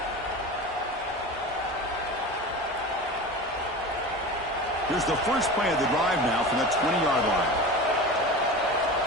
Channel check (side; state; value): both; normal; correlation 0.31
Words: Here's the first play of the drive now from the 20-yard line.